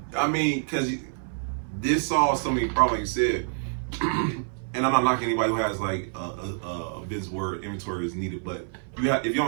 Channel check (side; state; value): left; silent; 57 dB below the other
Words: this solves so many problems, like you said. And I'm not knocking anybody who has like a business where inventory is needed, but if you